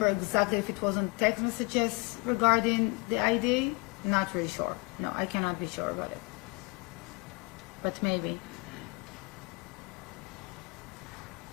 exactly if it was on text messages regarding the ID. Not really sure. No, I cannot be sure about it. But maybe.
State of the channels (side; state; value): right; quieter; 26.9 dB